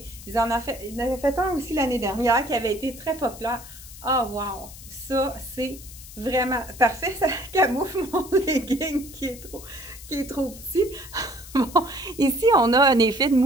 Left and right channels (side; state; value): left; noise; hiss, 16 dB below the sound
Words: Ils en avaient fait un aussi l'année dernière qui avait été très populaire. Ah, oh, wow! Ça, c'est vraiment parfait. Ça camoufle mon legging qui est trop petit. Bon, ici, on a un effet de